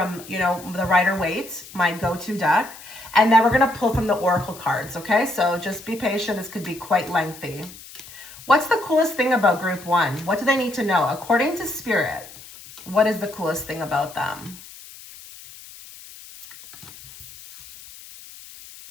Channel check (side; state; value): left; noise; hiss, 18 dB below the sound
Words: the Rider-Waite, my go-to deck. And then we're going to pull from the Oracle cards, okay? So just be patient. This could be quite lengthy. What's the coolest thing about group 1? What do they need to know? According to Spirit, what is the coolest thing about them?